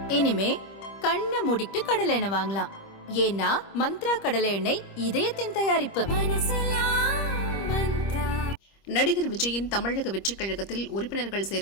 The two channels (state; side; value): late; right; 25 ms